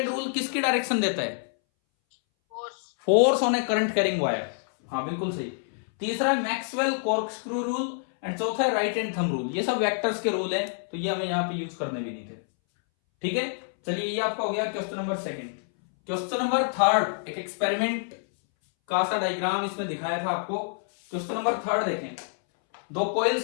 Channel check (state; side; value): silent; right; 60 dB below the other